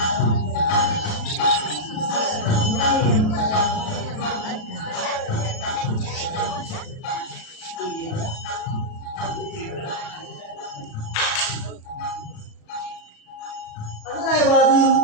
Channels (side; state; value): right; late; 37 ms